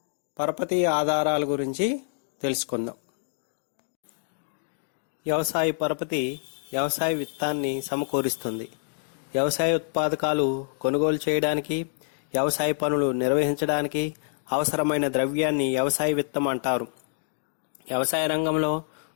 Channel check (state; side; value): silent; right; digital silence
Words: పరపతి ఆధారాల గురించి తెలుసుకుందాం. వ్యవసాయ పరపతి వ్యవసాయ విత్తాన్ని సమకూరుస్తుంది. వ్యవసాయ ఉత్పాదకాలు కొనుగోలు చేయడానికి, వ్యవసాయ పనులు నిర్వహించడానికి అవసరమైన ద్రవ్యాన్ని వ్యవసాయ విత్తం అంటారు. వ్యవసాయ రంగంలో